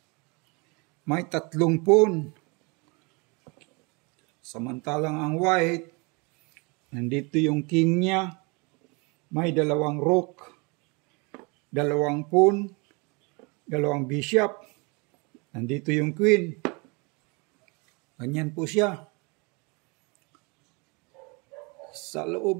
may 3 pawn. Samantalang ang white, nandito yung king niya, may 2 rook, 2 pawn, 2 bishop, nandito yung queen. Ganyan po siya. Sa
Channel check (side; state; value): left; quieter; 30.0 dB